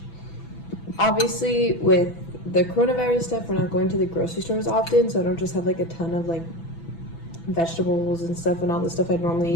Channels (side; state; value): right; late; 6.0 ms